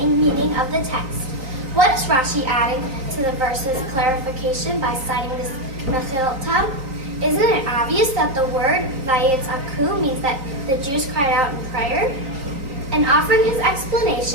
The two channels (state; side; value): late; left; 3.8 ms